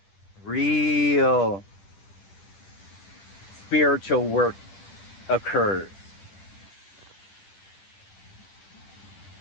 real spiritual work occurs.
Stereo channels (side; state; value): right; late; 10 ms